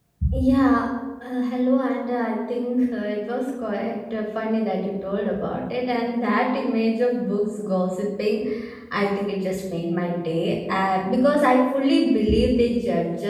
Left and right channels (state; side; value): identical; both; correlation 1.00